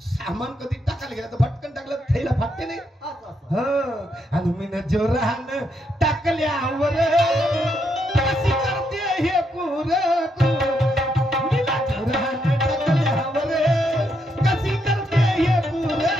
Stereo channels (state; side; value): normal; both; correlation 0.78